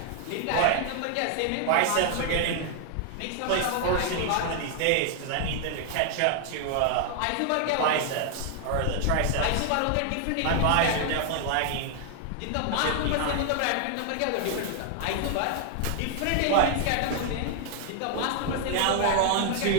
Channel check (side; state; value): both; different; correlation 0.00